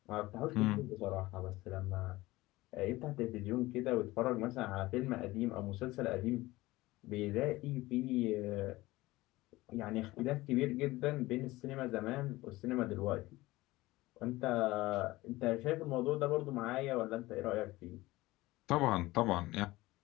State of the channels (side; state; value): right; quieter; 19.1 dB